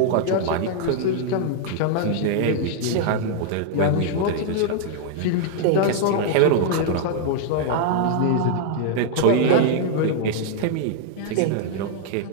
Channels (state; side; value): different; both; correlation -0.01